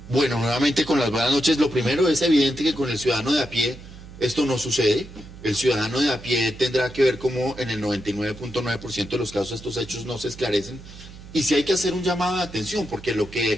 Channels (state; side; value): noise; right; hum, 16 dB below the sound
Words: Bueno, nuevamente con las buenas noches. Lo primero es evidente que con el ciudadano de a pie esto no sucede. El ciudadano de a pie tendrá que ver cómo en el 99.9% de los casos estos hechos no se esclarecen. Y si hay que hacer un llamado de atención, porque